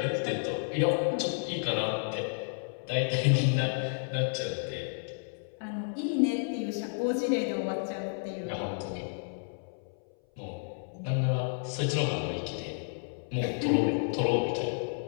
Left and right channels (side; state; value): right; silent; 57 dB below the other